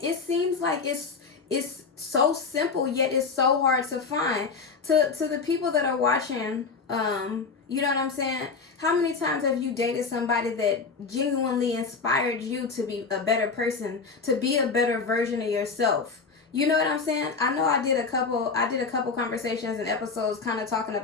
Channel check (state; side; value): quieter; right; 4.8 dB